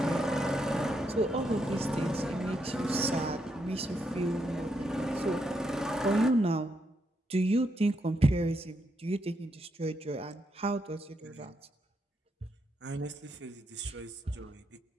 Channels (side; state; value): both; normal; correlation 0.79